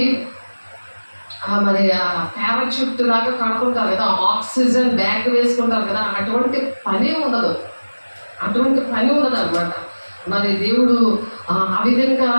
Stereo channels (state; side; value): inverted; both; correlation -1.00